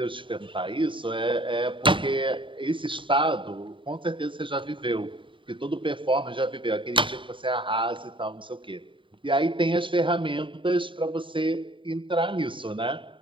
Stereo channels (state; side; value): late; left; 0.24 ms